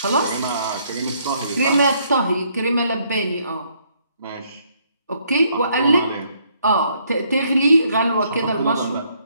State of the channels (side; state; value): both; inverted; correlation -0.69